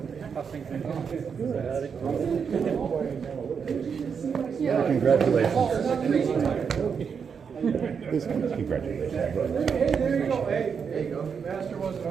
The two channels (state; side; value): quieter; left; 6.5 dB